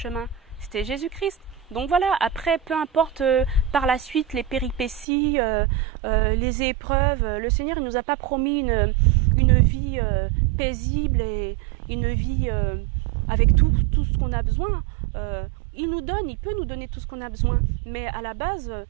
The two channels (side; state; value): left; drops out; at 5.1 s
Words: C'était Jésus-Christ. Donc voilà, après, peu importe par la suite les péripéties, les épreuves, le Seigneur il nous a pas promis une vie paisible et une vie avec tout ce qu'on a besoin. Il peut nous donner tout ce qu'on a besoin, mais à la base,